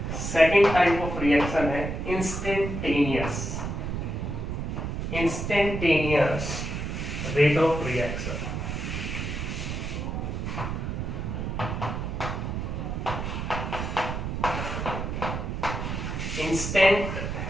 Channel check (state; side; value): noise; right; rumble, 3 dB below the sound